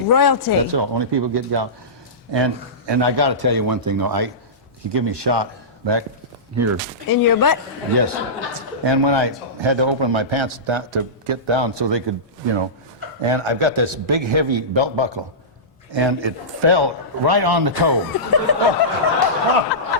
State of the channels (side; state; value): both; normal; correlation -0.19